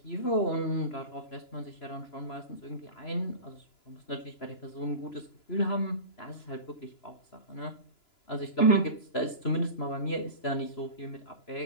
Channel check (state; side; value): late; right; 2.9 ms